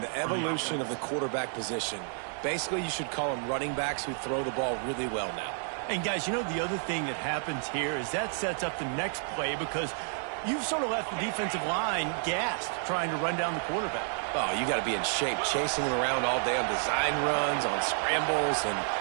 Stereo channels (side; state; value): left; silent; 57 dB below the other